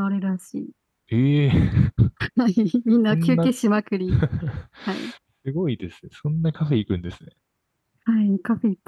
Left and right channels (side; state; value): both; identical; correlation 1.00